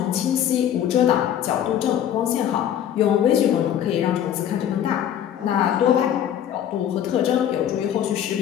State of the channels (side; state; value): right; quieter; 10.2 dB